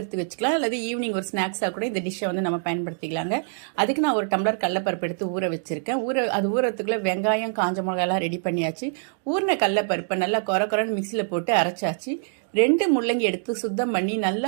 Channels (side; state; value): left; silent; digital silence